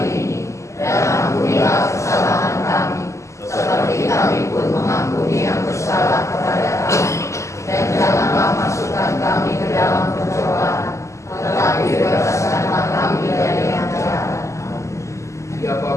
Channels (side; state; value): right; late; 0.14 ms